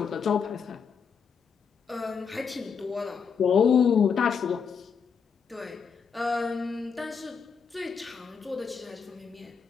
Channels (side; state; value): right; quieter; 6.3 dB